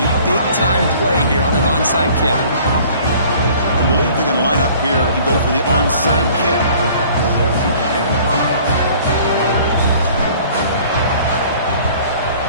big-time play here on an onside kick. I believe they're going to line up here and go for the onside kick.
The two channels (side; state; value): both; inverted; correlation -0.51